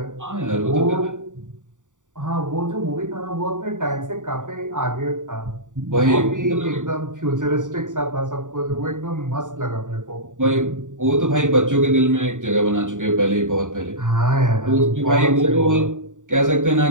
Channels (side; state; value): left; late; 0.86 ms